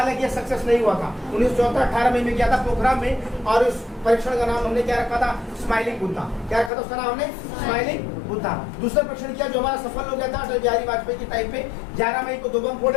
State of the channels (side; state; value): right; drops out; at 6.7 s